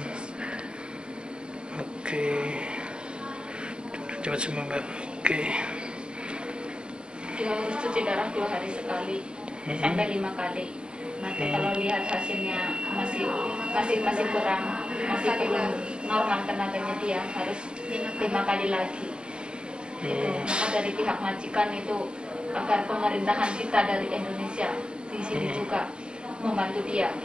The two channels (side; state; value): left; late; 0.050 ms